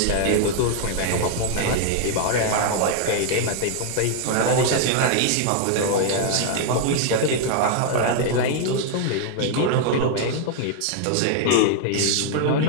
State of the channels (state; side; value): different; both; correlation 0.00